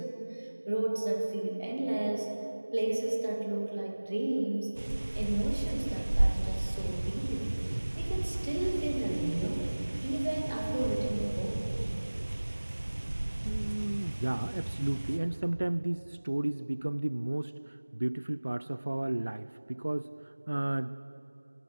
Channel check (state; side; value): inverted; both; correlation -1.00